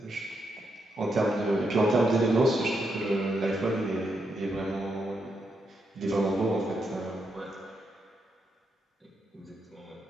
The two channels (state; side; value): normal; both; correlation 0.81